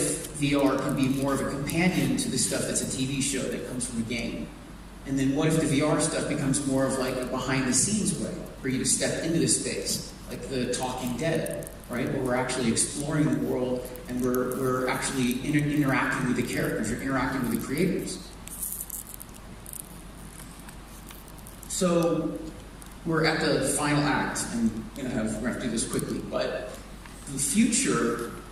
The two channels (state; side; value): identical; both; correlation 1.00